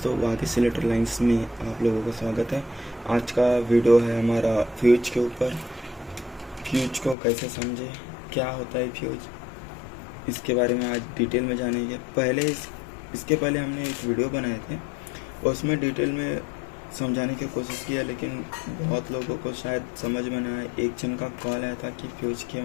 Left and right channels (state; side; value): drops out; right; at 7.2 s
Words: वाकिस इलेक्ट्रोलाइंस में आप लोगों का स्वागत है। आज का वीडियो है हमारा फ्यूज के ऊपर। फ्यूज को कैसे समझे, क्या होता है फ्यूज, इसके बारे में आज डिटेल में जानेंगे। इसके पहले हमने एक वीडियो बनाए थे, उसमें डिटेल में समझाने की कोशिश किया, लेकिन बहुत लोगों को शायद समझ में ना आए। एक जन का कॉल आया था कि फ्यूज के